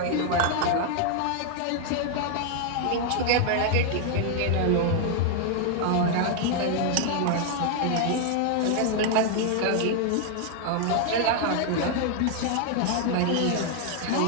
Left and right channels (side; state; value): both; different; correlation 0.00